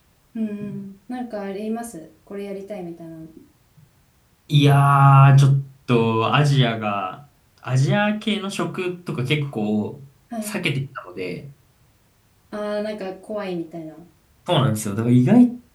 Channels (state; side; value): identical; both; correlation 1.00